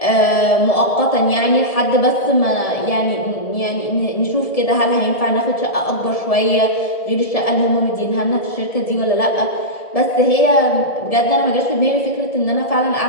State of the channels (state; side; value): late; right; 1.7 ms